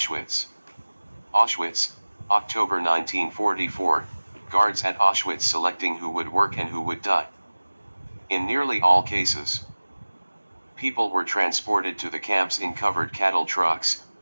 Auschwitz, October 1944, guards at Auschwitz selecting who would work and who would die. In nearly all cases, people were transported to the camps in covered cattle trucks,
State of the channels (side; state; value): both; inverted; correlation -1.00